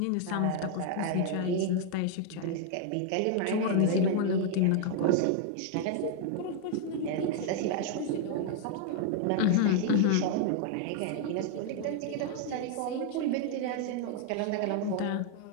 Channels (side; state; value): both; different; correlation 0.00